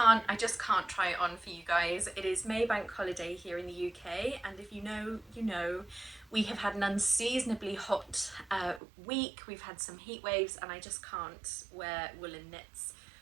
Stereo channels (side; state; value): left; drops out; at 8.8 s